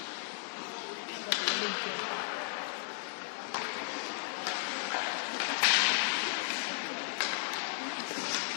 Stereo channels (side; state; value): right; silent; 54 dB below the other